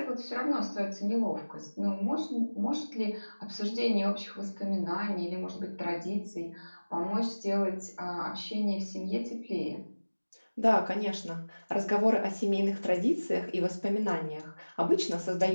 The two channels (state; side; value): inverted; both; correlation -1.00